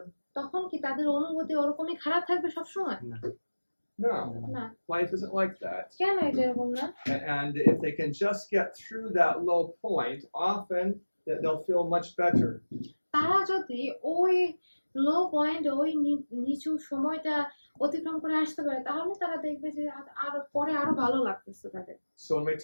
তখন কি তাদের অনুভূতি ওরকমই খারাপ থাকবে সবসময়? No. না। Life isn't like that. কেন এটা এরকম না? And if they can just get through that low point, often they'll feel much better. তারা যদি ওই লো পয়েন্ট, ওই নিচু সময়টা অতিক্রম করে আসতে পারে তাহলে তারা দেখবে যে আরো ভালো লাগতেছে তাদের। So when we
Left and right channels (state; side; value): inverted; both; correlation -1.00